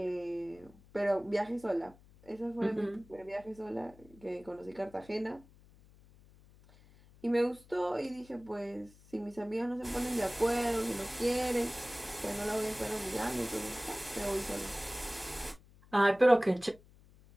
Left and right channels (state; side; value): noise; left; hum, 25 dB below the sound